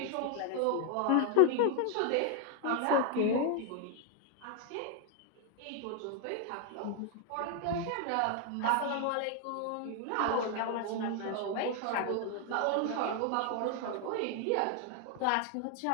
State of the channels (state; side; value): different; both; correlation 0.00